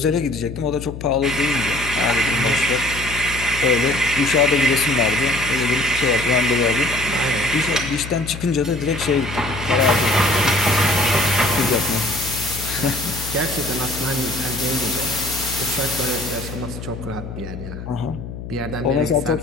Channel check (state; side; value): noise; left; hum, 10 dB below the sound